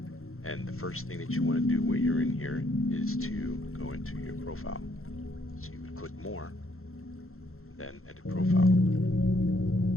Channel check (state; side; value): late; right; 0.62 ms